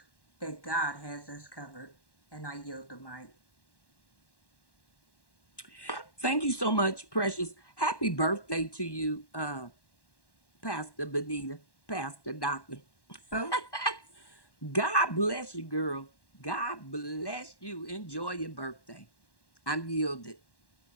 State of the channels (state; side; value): late; right; 1.1 ms